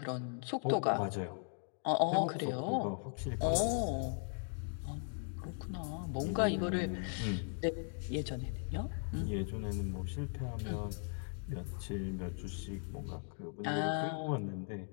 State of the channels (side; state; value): right; silent; 52 dB below the other